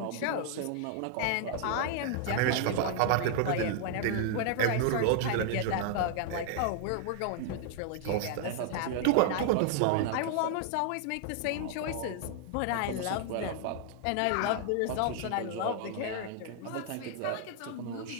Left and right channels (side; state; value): both; different; correlation 0.00